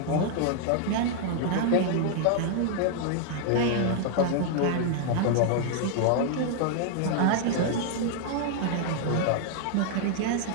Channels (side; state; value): both; different; correlation 0.00